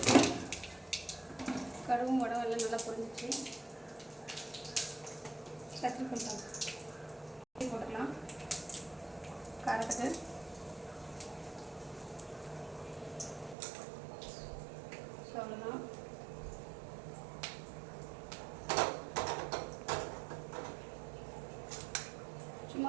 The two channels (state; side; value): drops out; left; at 13.6 s